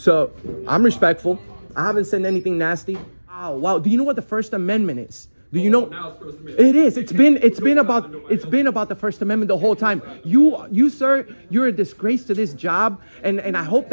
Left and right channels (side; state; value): both; inverted; correlation -1.00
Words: I'm respectful. I haven't said anything nasty. Wow. Do you know what the First Amendment is? Do you know? Now it's First Amendment. It is. It's been about the First Amendment the whole time. You sir, you're a disgrace to this job, and I hope